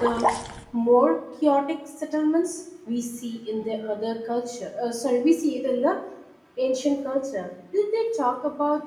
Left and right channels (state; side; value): identical; both; correlation 1.00